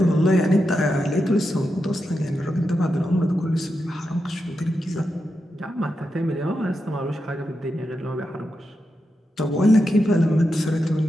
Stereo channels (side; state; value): both; normal; correlation 0.87